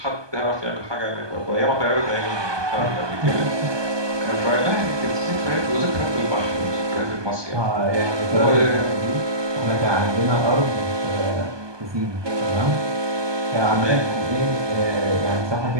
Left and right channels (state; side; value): late; left; 1.2 ms